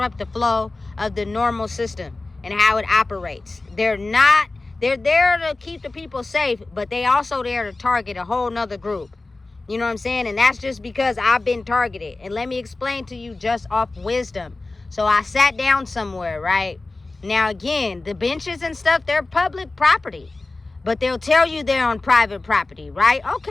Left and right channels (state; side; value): quieter; right; 3.3 dB